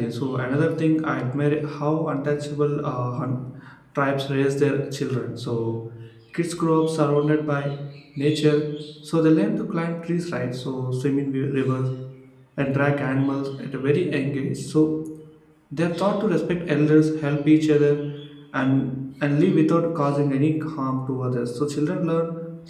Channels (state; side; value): identical; both; correlation 1.00